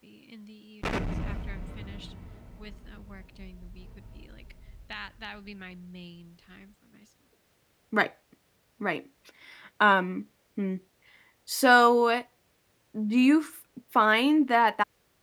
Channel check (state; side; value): identical; both; correlation 1.00